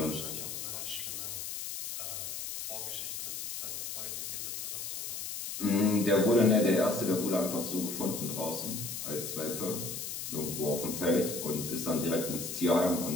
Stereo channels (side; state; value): left; noise; hiss, 5 dB below the sound